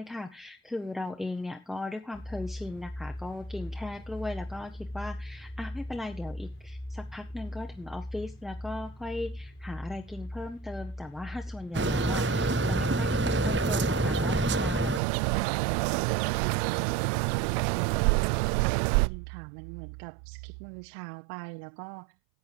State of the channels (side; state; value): left; drops out; at 15.0 s